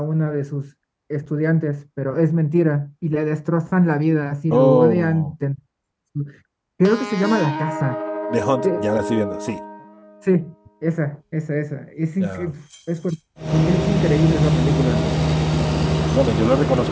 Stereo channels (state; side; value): identical; both; correlation 1.00